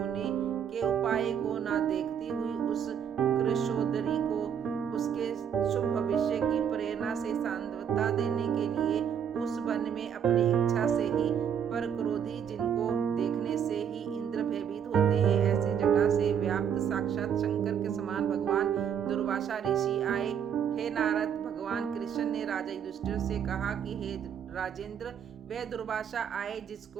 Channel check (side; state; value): left; quieter; 8.3 dB